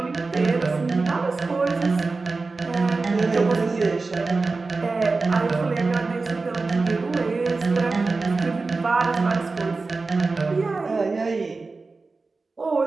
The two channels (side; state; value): left; quieter; 3.9 dB